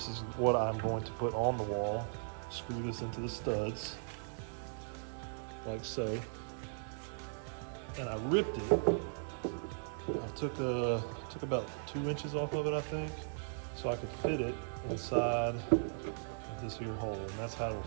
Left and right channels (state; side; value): silent; left; digital silence